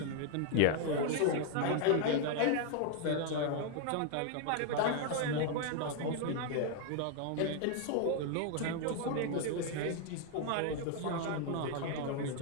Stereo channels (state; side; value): different; both; correlation 0.00